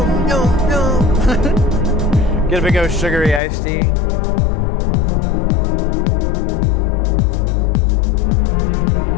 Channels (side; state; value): right; drops out; at 3.4 s